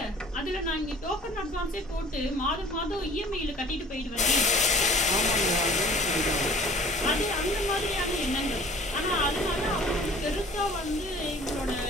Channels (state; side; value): normal; both; correlation 0.48